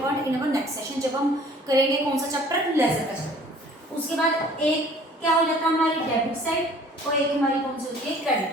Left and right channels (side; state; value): both; normal; correlation 0.52